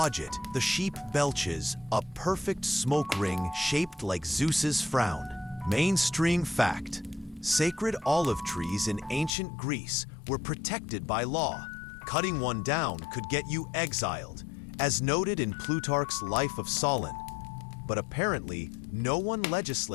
it, the sheep belches a perfect smoke ring shaped like Zeus's frown. Mainstream fact: sacred olive trees in ancient Greece were protected by law. Cutting one down could get you exiled, as noted in Plutarch's Life of Solon. But apparently, no one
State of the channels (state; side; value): drops out; right; at 9.3 s